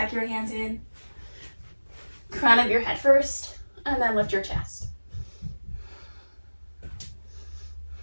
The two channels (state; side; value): inverted; both; correlation -1.00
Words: your hands in. Crown of your head first, and then lift your chest.